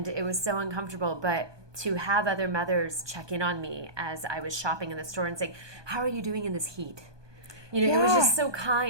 it was so uncomfortable. But to have other mothers check in on me as I was shopping in the store and saying, how are you doing in this heat? It was just so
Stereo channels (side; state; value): left; late; 1.2 ms